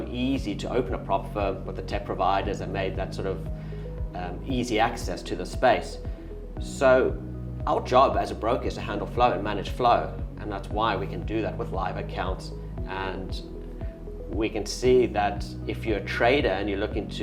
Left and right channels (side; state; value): both; identical; correlation 1.00